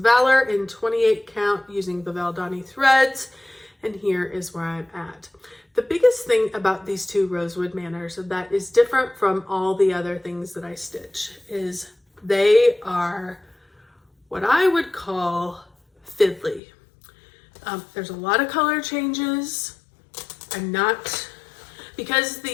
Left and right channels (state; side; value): drops out; right; at 16.6 s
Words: in 28 count using the Valdani threads. And here is where I'm at. The biggest thing about these two Rosewood Manors that is different from all the other things that I stitch is they are what I would call fiddly. There's a lot of color changes. I'm not, because